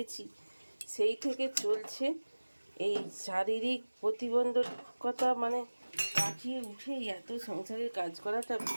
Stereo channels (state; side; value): inverted; both; correlation -1.00